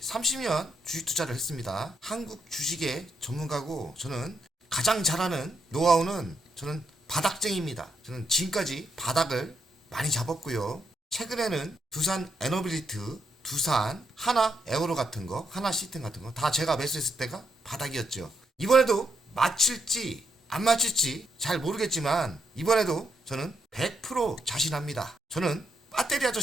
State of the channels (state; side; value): normal; both; correlation 0.79